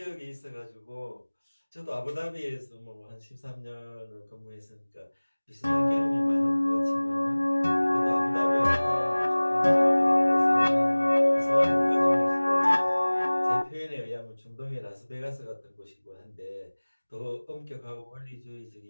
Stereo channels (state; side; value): inverted; both; correlation -1.00